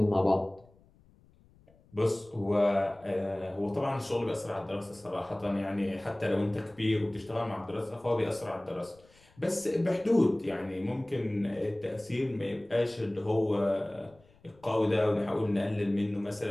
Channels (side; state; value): left; noise; rumble, 29 dB below the sound